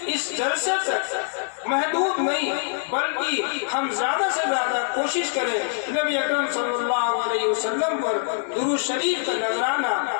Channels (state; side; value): silent; right; 56 dB below the other